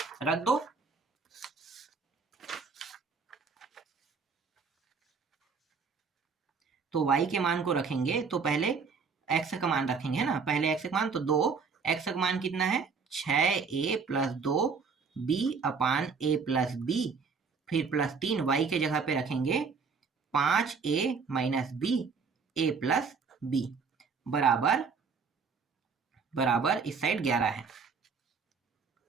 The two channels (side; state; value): left; quieter; 5.3 dB